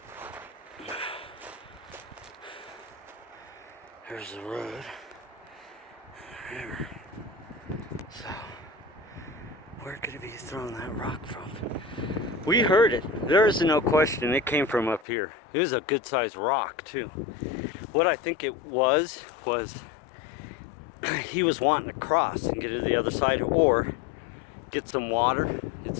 There's the road. There. So, where could he be throwing that rock from? We heard it. There is no question. It came from up here. It was a good sized rock, too. What I think it was he was wanting to cross and get to the other side or get some water.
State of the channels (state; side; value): drops out; right; at 15.1 s